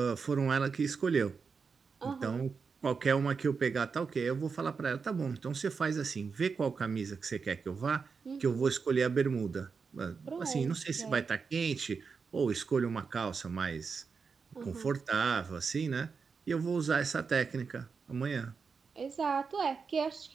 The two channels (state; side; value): quieter; left; 5.3 dB